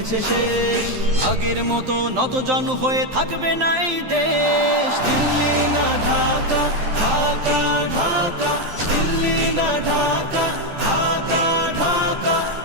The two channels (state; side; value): late; left; 12 ms